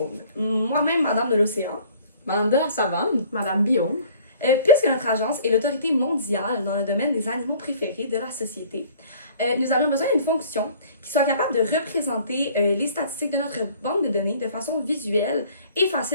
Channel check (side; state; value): both; inverted; correlation -0.53